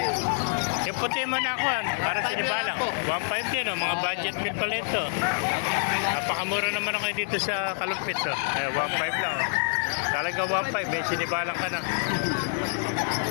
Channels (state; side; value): silent; right; 59 dB below the other